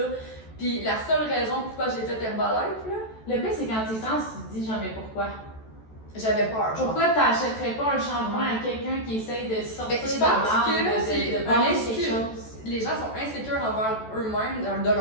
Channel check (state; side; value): late; right; 14 ms